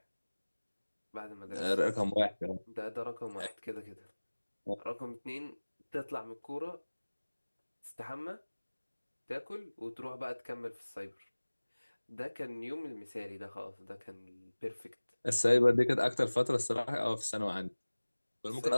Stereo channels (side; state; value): both; inverted; correlation -1.00